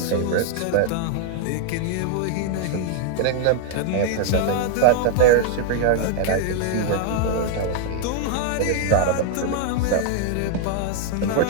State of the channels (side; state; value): both; different; correlation -0.01